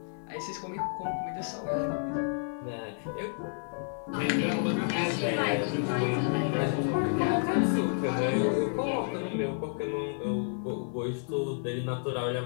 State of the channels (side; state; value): right; silent; 55 dB below the other